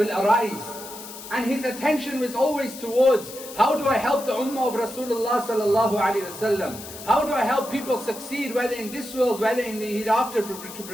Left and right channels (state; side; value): noise; left; hiss, 13 dB below the sound